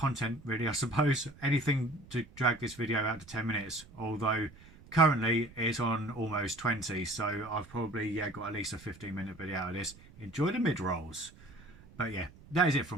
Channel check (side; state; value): right; noise; rumble, 22 dB below the sound